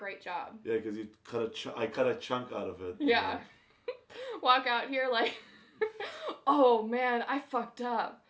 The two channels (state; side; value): identical; both; correlation 1.00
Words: job. Yeah, because you I cut a chunk out of it. Yeah. Walk out here like, oh man, I fucked up.